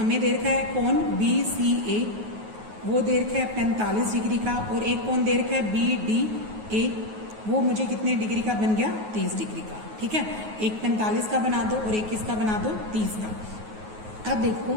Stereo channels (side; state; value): left; late; 9.4 ms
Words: दे रखा है कोण BCA, वो दे रखा है 45 डिग्री का, और एक कोण दे रखा है BDA, वो मुझे कितने डिग्री का बन गया, 30 डिग्री का, ठीक है। एक 45 का बना दो और एक किसका बना दो, 30 का। अब देखो